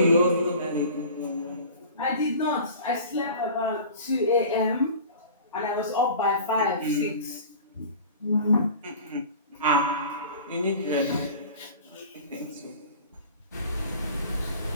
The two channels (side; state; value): both; inverted; correlation -0.41